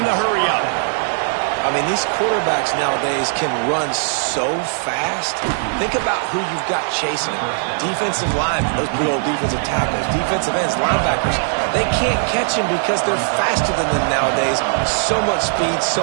the hurry-up. I mean, these quarterbacks nowadays can run so fast. Think about who you've got chasing them. Defensive linemen, those big old defensive tackles, defensive ends, linebackers. They can't catch him because they're faster than them nowadays. So much speed, so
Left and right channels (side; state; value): left; silent; digital silence